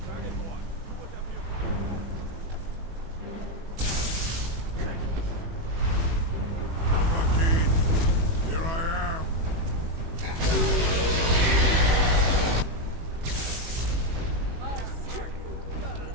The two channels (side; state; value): left; late; 18 ms